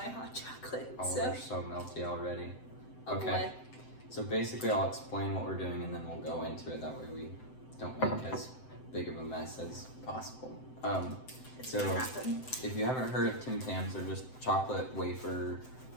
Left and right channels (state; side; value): late; right; 7.8 ms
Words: hot chocolate. Oh, they're so melty already. Oh okay. Boy. So basically I'll explain what we're doing and then we'll go into it. That way we don't make as big of a mess as possible. So if you haven't heard of Tams, they're just chocolate wafer